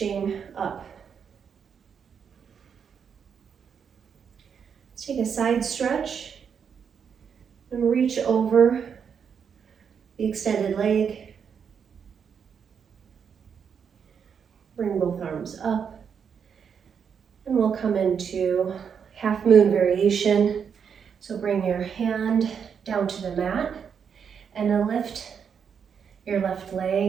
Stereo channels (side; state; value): left; quieter; 7.0 dB